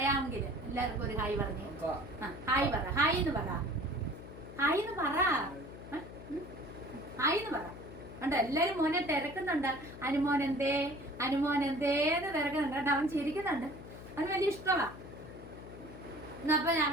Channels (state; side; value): noise; left; hum, 14 dB below the sound